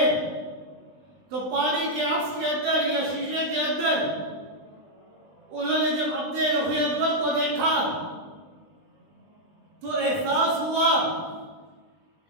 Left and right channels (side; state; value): left; late; 20 ms